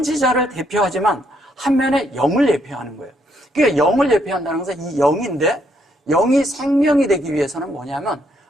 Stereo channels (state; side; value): normal; both; correlation 0.73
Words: 대표하지만 한면에 영을 예표하는 거예요. 그러니까 영을 예표한다는 것은 이 영인데 영이 생명이 되기 위해서는 뭐냐면